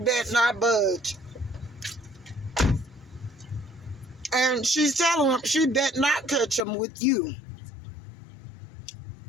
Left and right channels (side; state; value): right; drops out; at 6.6 s